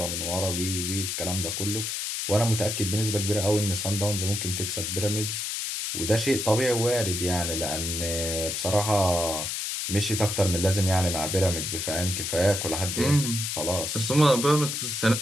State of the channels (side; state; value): left; noise; hiss, 2 dB below the sound